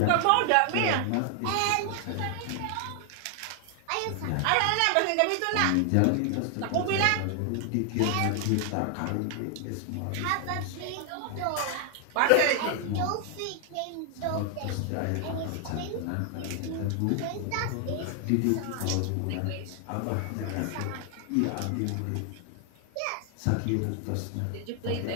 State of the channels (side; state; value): both; different; correlation 0.00